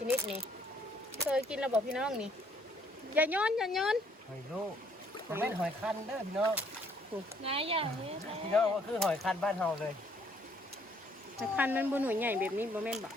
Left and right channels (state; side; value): normal; both; correlation 0.65